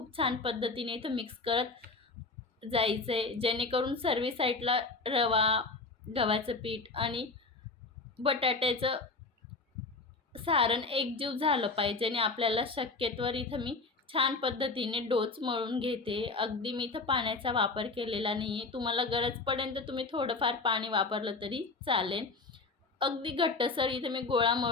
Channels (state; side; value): quieter; right; 3.8 dB